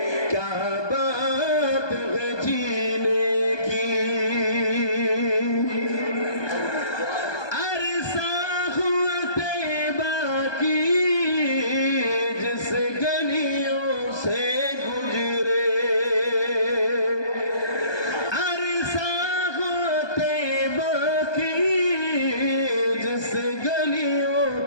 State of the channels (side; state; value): right; late; 1.2 ms